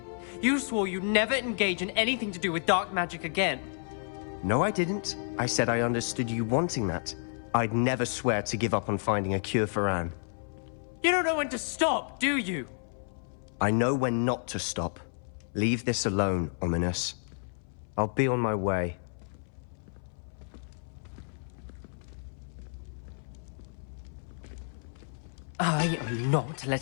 You swore you'd never engage in anything to do with dark magic again. No, I didn't. I said I understood you wanting that. I'd never swear to give up on finding a cure for Anne. You don't know when to stop, do you? I know when not to stop. Leave this alone, Ominous. I'll be on my way. I am not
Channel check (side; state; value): right; silent; 57 dB below the other